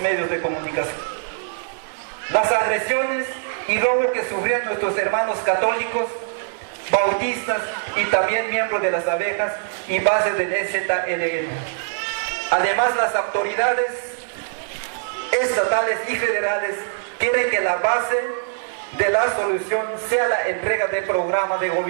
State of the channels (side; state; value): left; silent; 64 dB below the other